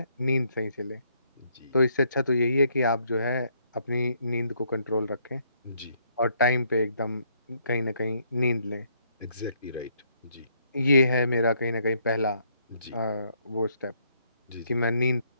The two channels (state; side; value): inverted; both; correlation -0.70